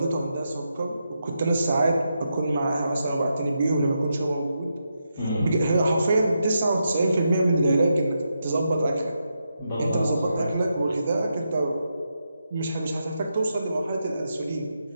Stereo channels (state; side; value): inverted; both; correlation -0.85